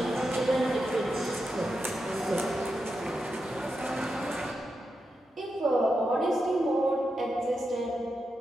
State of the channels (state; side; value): normal; both; correlation 0.87